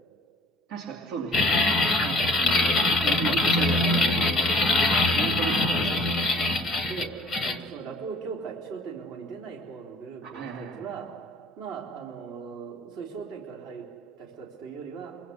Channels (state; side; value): normal; both; correlation 0.51